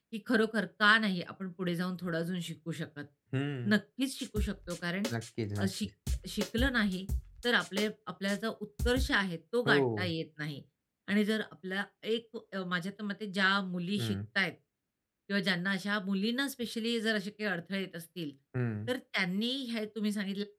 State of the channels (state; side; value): identical; both; correlation 1.00